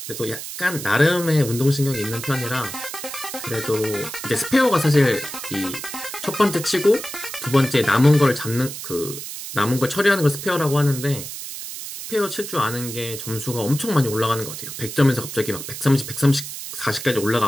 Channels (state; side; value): noise; right; hiss, 9 dB below the sound